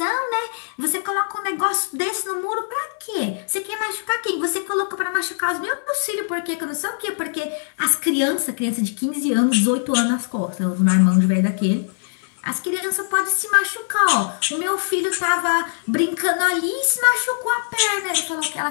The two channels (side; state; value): right; silent; digital silence